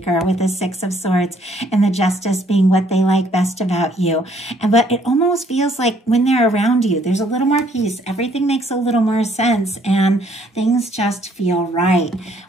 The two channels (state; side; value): normal; both; correlation 0.64